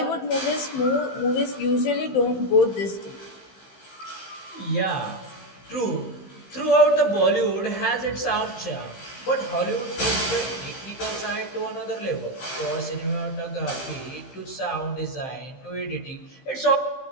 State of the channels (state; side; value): late; right; 15 ms